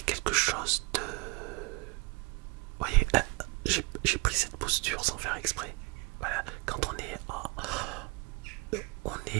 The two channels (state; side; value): quieter; left; 27.4 dB